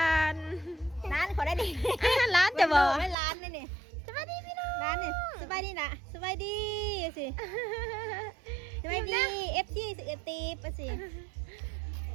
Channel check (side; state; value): left; drops out; at 3.2 s